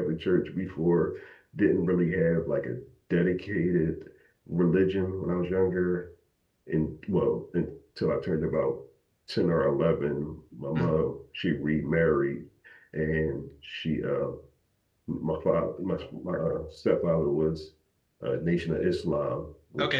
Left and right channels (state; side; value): identical; both; correlation 1.00